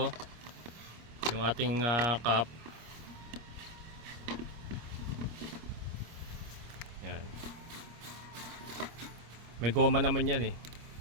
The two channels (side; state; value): left; late; 26 ms